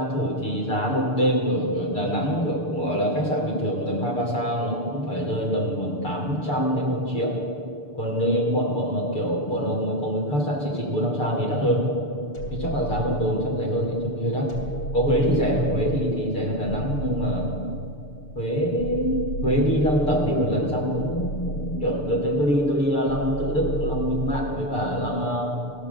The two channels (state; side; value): late; right; 6.8 ms